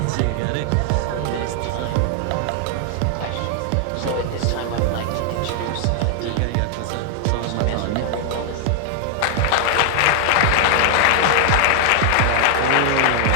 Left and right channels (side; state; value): both; different; correlation 0.00